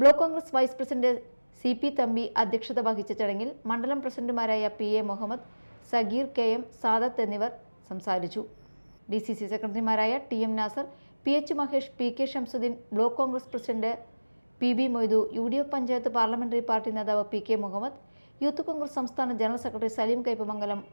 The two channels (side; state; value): both; inverted; correlation -1.00